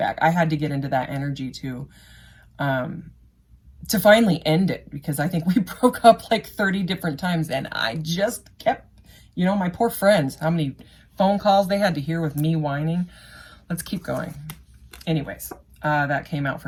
I had to get into that energy to finally end it, because I think we broke up like 30 different times, and I just kept, you know, my poor friends, how many phone calls they had to hear with me whining. Let's keep going. Anyways, that came out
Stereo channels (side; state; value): both; identical; correlation 1.00